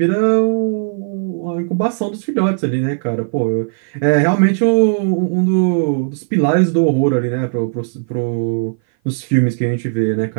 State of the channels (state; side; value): silent; left; 57 dB below the other